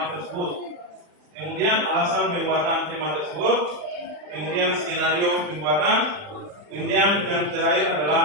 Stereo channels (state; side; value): late; left; 40 ms